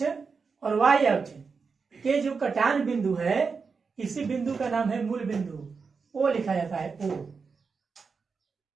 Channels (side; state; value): left; quieter; 5.1 dB